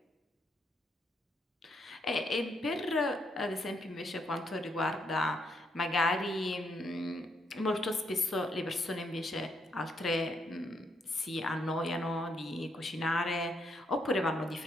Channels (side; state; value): both; normal; correlation 0.76